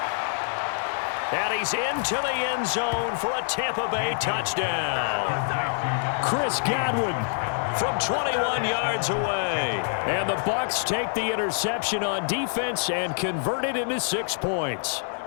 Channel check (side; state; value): right; silent; digital silence